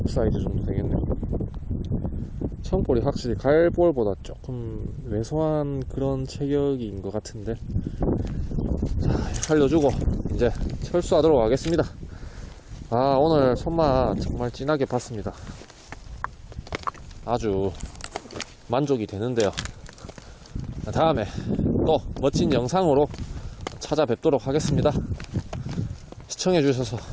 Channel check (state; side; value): identical; both; correlation 1.00